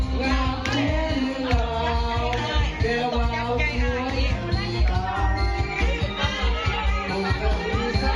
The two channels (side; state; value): both; identical; correlation 1.00